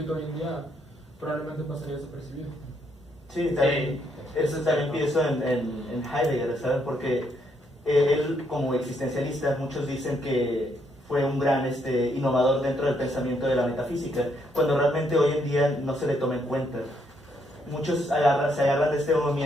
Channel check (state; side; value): normal; both; correlation 0.74